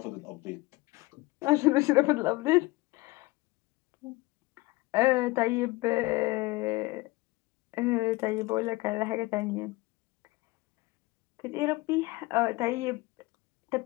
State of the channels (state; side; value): quieter; right; 21.5 dB